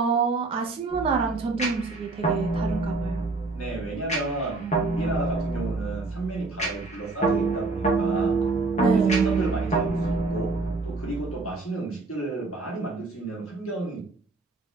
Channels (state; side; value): quieter; left; 3.5 dB